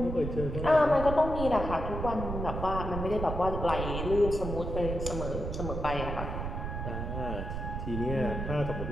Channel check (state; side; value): noise; right; rumble, 4 dB below the sound